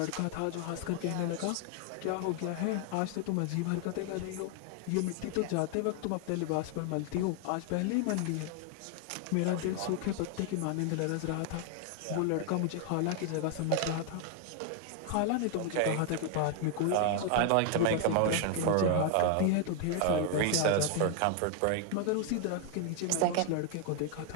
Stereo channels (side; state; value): both; different; correlation 0.00